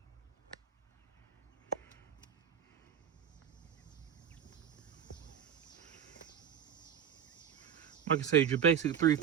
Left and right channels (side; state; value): left; quieter; 8.6 dB